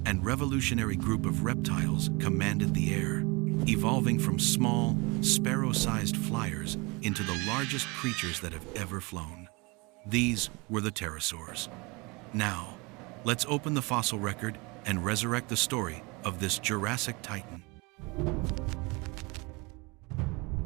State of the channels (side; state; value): left; quieter; 27.1 dB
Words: and revolutionary group of reptiles commanded the air, evolving from small, sparrow-sized flyers into the largest creatures that have ever flown. These were the pterosaurs. Now, let's open the fossil record and resurrect the story of this Jurassic titan.